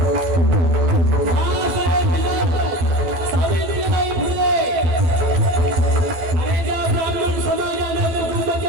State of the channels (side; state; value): left; late; 12 ms